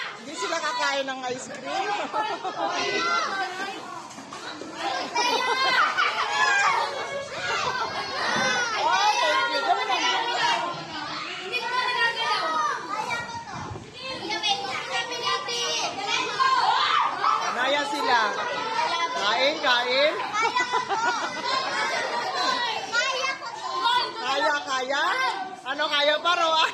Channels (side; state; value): both; identical; correlation 1.00